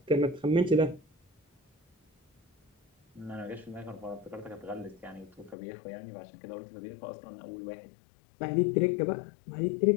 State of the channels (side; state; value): right; drops out; at 5.6 s